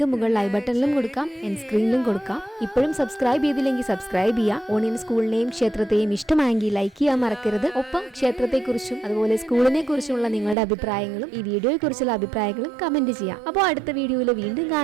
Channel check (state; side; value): drops out; left; at 10.6 s